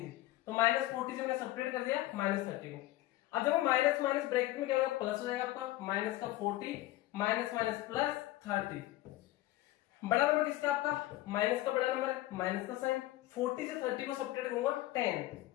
से, तो -40 से मैंने सब्ट्रैक्ट कर दिया -30 को। अब देखो माइनस माइनस ब्रैकेट में क्या होगा, प्लस हो जाएगा आपका, माइनस का 40 माइनस माइनस प्लस 30। बड़ा नंबर किसका आपका, माइनस का बड़ा नंबर है, माइनस का साइन। 40 से 30 को सब्ट्रैक्ट करूंगा 10,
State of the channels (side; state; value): right; quieter; 16.3 dB